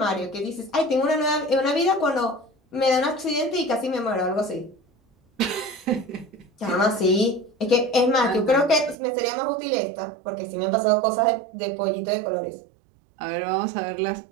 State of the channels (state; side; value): drops out; left; at 9.0 s